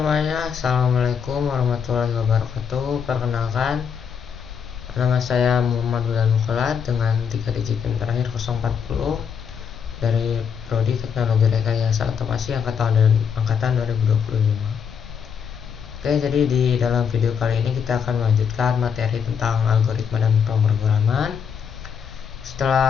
assalamualaikum warahmatullahi wabarakatuh. Perkenalkan, nama saya Muhammad Wildan Mukholat dengan 3 digit PIN terakhir 040 dari Prodi Teknologi Rekayasa Otomasi angkatan 2025. Oke, jadi di dalam video kali ini kita akan melanjutkan materi tentang algoritma dan pemrograman.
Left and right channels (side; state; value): right; quieter; 7.0 dB